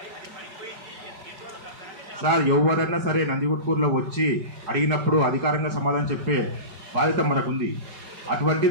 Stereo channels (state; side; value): late; left; 5.3 ms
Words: సార్. ఎవరైనా సరే నందిగుట్కూరులో వచ్చి అడిగినప్పుడు అధికారంగా సమాధానం చెప్పే బాధ్యత మనకుంది.